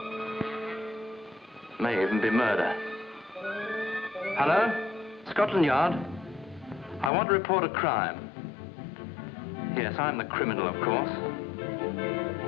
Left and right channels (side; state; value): right; drops out; at 7.1 s